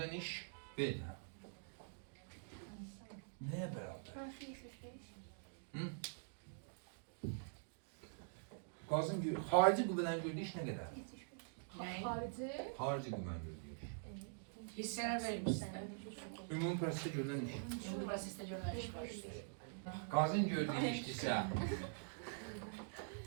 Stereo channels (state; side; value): silent; left; digital silence